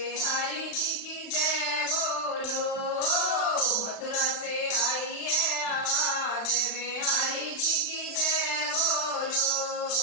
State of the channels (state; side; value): late; right; 35 ms